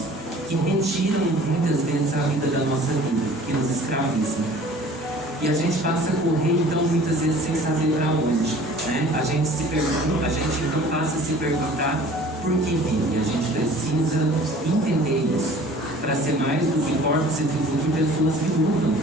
que retiram muitas vezes a vida da nossa vida, que nos escravizam. E a gente passa a correr, então, muitas vezes sem saber para onde. Né? A gente então passa a se perguntar por que vive. A gente precisa entender isso, para ser mais do que corpos e do que pessoas que lutam.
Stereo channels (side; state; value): both; normal; correlation 0.48